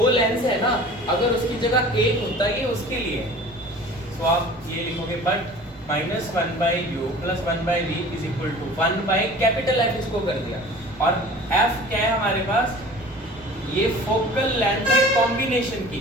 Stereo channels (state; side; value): noise; right; rumble, 23 dB below the sound